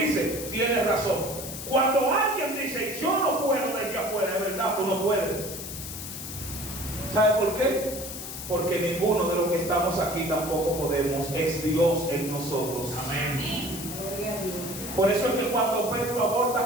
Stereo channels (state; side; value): noise; left; hiss, 8 dB below the sound